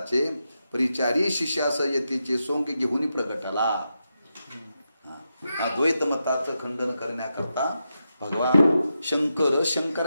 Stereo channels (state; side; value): inverted; both; correlation -0.87